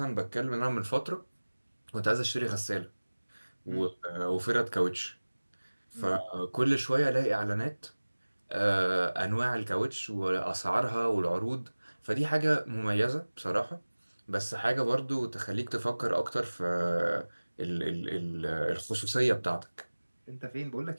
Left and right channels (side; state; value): both; inverted; correlation -1.00